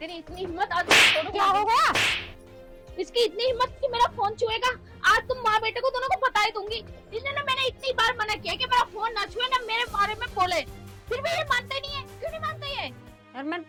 इतनी हिम्मत, आज क्या हो गया? इसकी इतनी हिम्मत कि मेरा फोन छुएगा। आज तुम माँ बेटे को दोनों को बता ही दूंगी। इसने ना, मैंने इतनी बार मना किया कि मेरा फोन ना छुए, ना मेरे बारे में बोले, फिर भी ये मानते नहीं है। क्यों नहीं मानते ये? यार मैंने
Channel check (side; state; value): both; identical; correlation 1.00